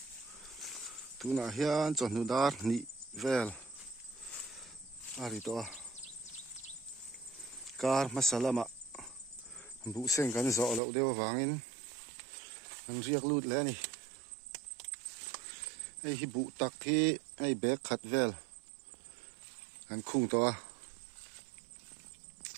tuna hian chon nu dar ni vel ari to kar masalama bu seng kan zo lo dewa wangin an riak lut le ni ei hi bu tak hi ei bek khat vel an khung to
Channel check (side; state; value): left; drops out; at 10.8 s